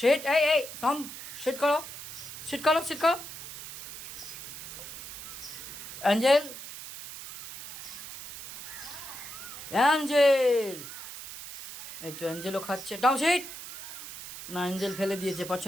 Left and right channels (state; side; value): noise; right; hiss, 11 dB below the sound